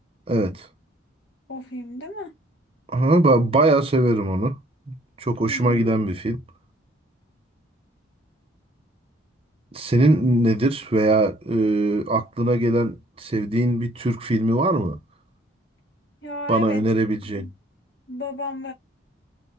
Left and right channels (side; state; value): both; normal; correlation 0.60